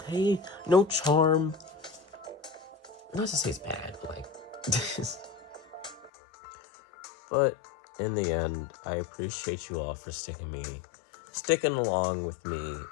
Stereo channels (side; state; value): right; drops out; at 6.1 s